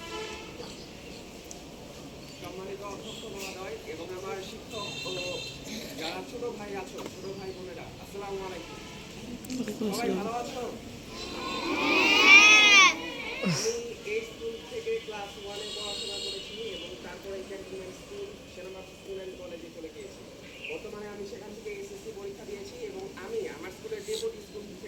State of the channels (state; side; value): identical; both; correlation 1.00